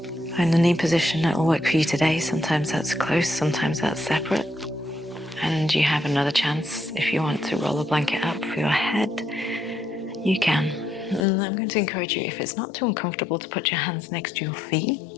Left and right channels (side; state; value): right; drops out; at 11.2 s